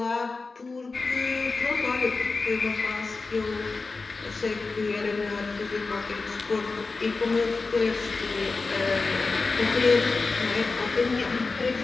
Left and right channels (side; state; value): right; quieter; 4.0 dB